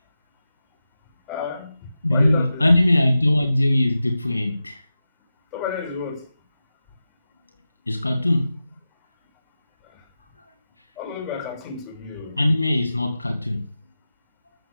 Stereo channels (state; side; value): inverted; both; correlation -0.93